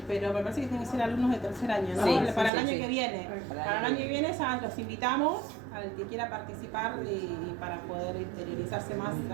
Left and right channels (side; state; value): left; drops out; at 2.5 s